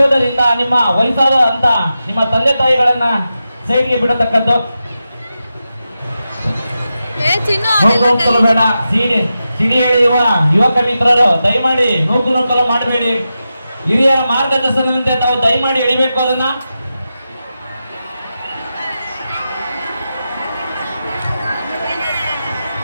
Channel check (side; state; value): both; inverted; correlation -0.90